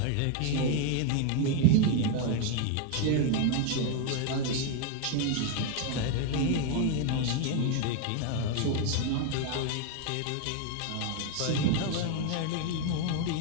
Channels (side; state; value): both; different; correlation 0.01